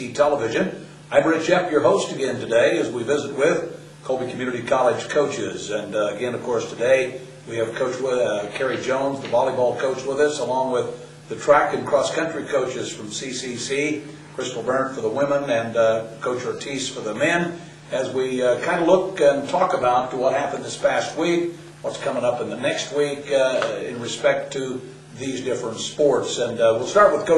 Television. I'm Berndt, your host again today as we visit with Colby Community College coaches. And again, of course, today we have Coach Carey Jones, the volleyball coach, with us, along with the track and cross-country coaches from CCC, Berndt for the women and Coach Ortiz for the men, as we kind of look and talk about what happened this past week, what's coming up in the next week in respect to these different sports. And we'll start with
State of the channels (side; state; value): both; identical; correlation 1.00